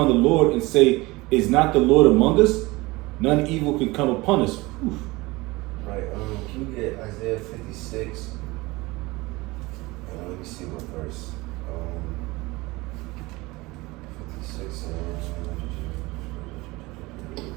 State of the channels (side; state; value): left; quieter; 22.0 dB